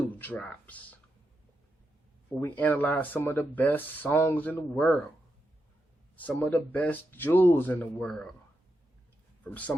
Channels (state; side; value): normal; both; correlation 0.85